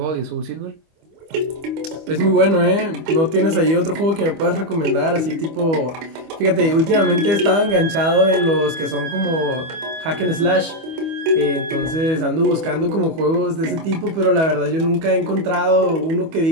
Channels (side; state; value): left; late; 25 ms